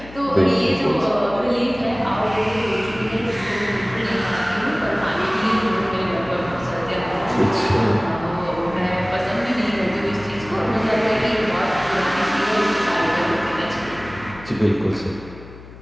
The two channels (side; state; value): left; noise; hum, 17 dB below the sound